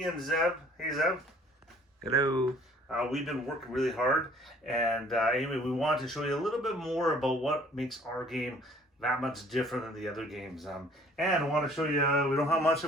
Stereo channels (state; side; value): normal; both; correlation 0.55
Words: and Zeb. Hey Zeb. Hello. We've been working really hard, and anyway, we wanted to show you a little bit more about what makes our game that much different than the other games. And I want to show you, we don't have much